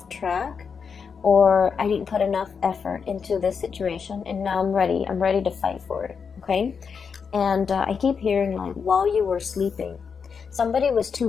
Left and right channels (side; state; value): right; quieter; 6.0 dB